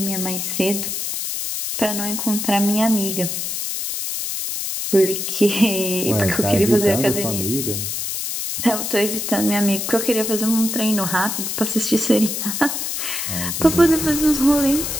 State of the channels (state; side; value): noise; left; hiss, 3 dB below the sound